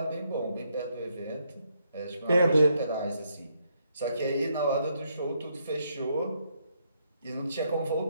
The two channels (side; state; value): both; inverted; correlation -0.75